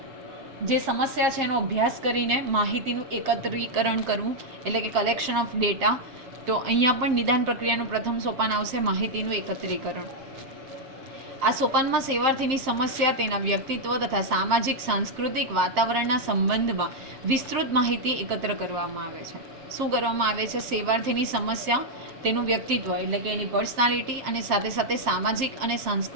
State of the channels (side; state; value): left; late; 7.5 ms